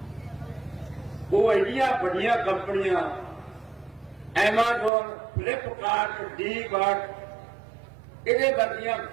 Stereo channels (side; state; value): left; drops out; at 4.9 s